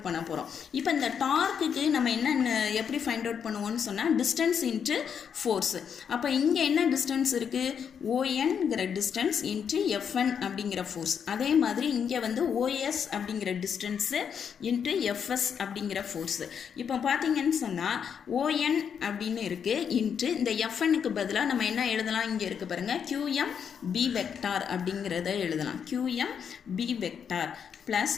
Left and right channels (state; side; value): quieter; right; 7.4 dB